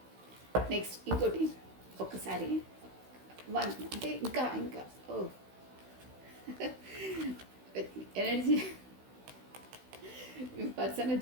నెక్స్ట్ ఇంకోటి ఒక్కసారి వన్ అంటే ఇంకా ఓ ఎనర్జీ పర్సన్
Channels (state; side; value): late; left; 16 ms